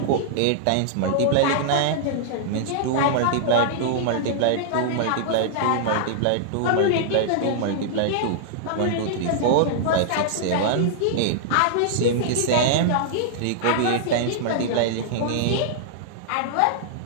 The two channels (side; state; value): both; different; correlation -0.01